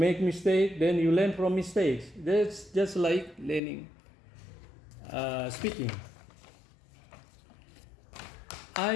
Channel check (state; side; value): drops out; right; at 3.6 s